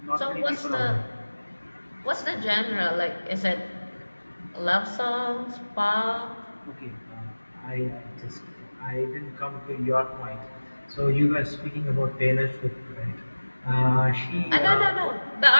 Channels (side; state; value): both; inverted; correlation -1.00